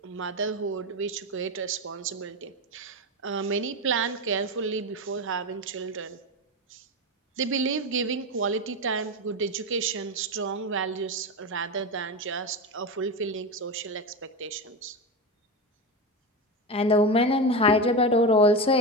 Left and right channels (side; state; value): both; normal; correlation 0.18